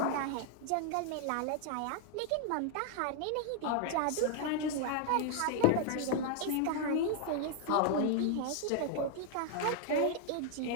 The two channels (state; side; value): different; both; correlation 0.00